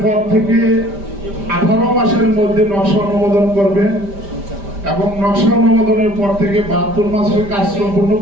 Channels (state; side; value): late; left; 5.1 ms